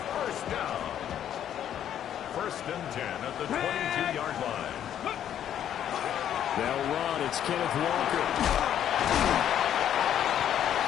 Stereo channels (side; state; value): right; quieter; 10.2 dB